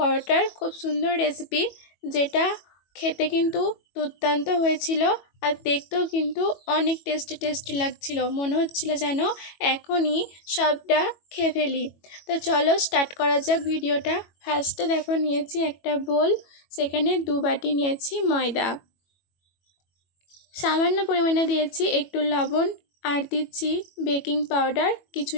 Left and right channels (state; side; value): late; right; 21 ms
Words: খুব সুন্দর রেসিপি, যেটা খেতে কিন্তু দুর্দান্ত হয়েছিল আর দেখতেও কিন্তু অনেক টেস্টি লাগছিল। মনে হচ্ছিল যেন এখনই সবটা খেয়ে ফেলি। তো চলো স্টার্ট করা যাক ভিডিওটা। ফার্স্টে দেখো নিয়েছি একটা বোল, সেখানে 2 বাটি নিয়েছি ময়দা, সামান্য পরিমাণে দিয়েছি একটু লবণ, আর দিচ্ছি বেকিং পাউডার